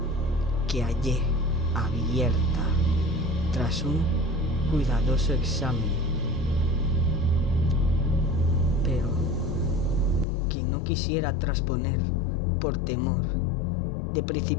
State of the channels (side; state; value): right; drops out; at 10.2 s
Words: que hallé abierta tras un cuidadoso examen, pero que no quisiera trasponer por temor de